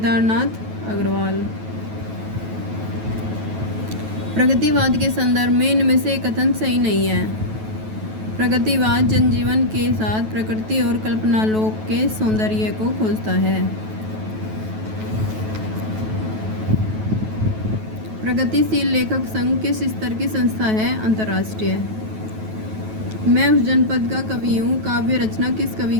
अग्रवाल। प्रगतिवाद के संदर्भ में इनमें से कथन सही नहीं है। प्रगतिवाद जनजीवन के साथ प्रकृति और कल्पनालोक के सौंदर्य को खोजता है। प्रगतिशील लेखक संघ किस स्तर की संस्था है? अंतर्राष्ट्रीय। मैं उस जनपद का कवि हूँ काव्य रचना किस कवि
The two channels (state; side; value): late; left; 9.2 ms